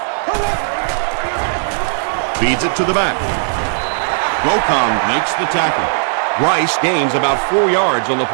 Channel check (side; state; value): left; silent; digital silence